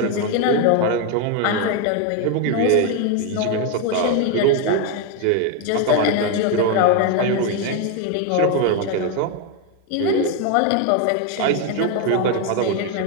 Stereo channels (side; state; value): both; different; correlation 0.01